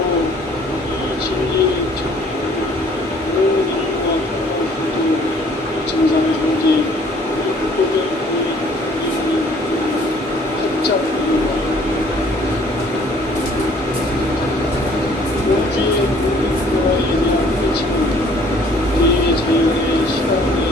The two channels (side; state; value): both; normal; correlation 0.57